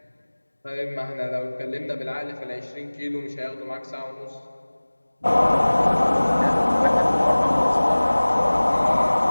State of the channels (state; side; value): inverted; both; correlation -1.00